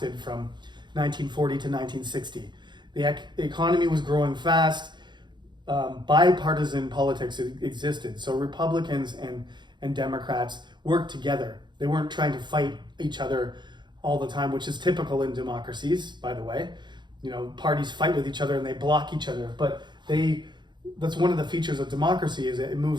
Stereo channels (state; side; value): late; left; 0.22 ms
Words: from 1940 to 1960. The economy was growing fast. Bipartisan politics existed. So Republicans and Democrats worked together. They weren't trying to fight each other all the time, which is typical in democracies, by the way. Parties fight with each other and they block each other, but that's one of the features of democracy, is it